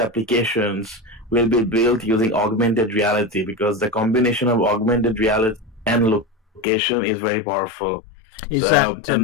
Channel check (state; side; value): drops out; right; at 6.7 s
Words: will be built using augmented reality, because the combination of augmented reality and location is very powerful. Is that